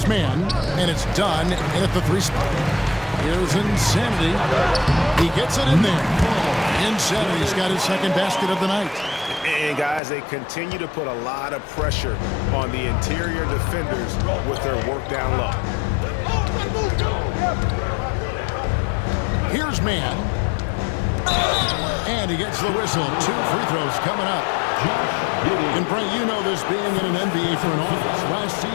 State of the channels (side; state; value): right; drops out; at 10.0 s